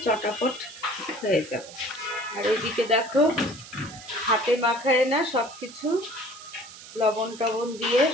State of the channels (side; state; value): right; noise; hiss, 16 dB below the sound